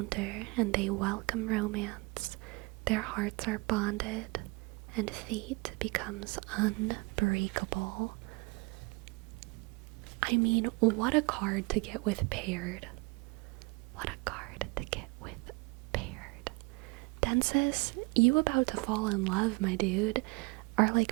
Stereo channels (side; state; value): left; quieter; 27.5 dB